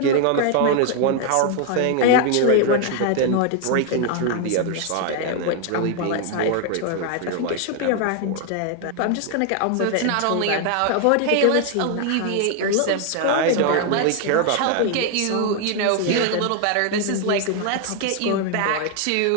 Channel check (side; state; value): both; different; correlation 0.00